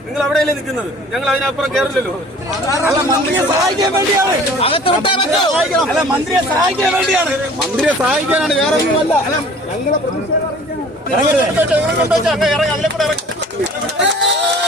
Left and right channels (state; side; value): normal; both; correlation 0.49